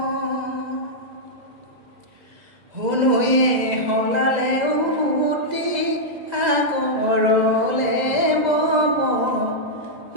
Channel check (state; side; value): late; left; 2.0 ms